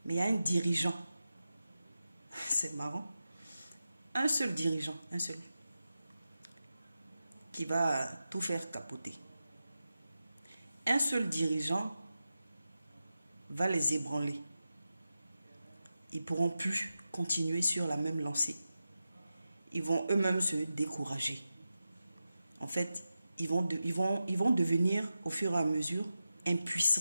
mais il y a un dirigeant. C'est marrant. Un seul dirigeant, un seul, qui va tout faire capoter. Un seul dirigeant va les ébranler. Ils ne pourront plus continuer sur la même lancée. Ils vont eux-mêmes se décourager. En fait, ils vont devenir au fur et à mesure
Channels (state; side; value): inverted; both; correlation -0.92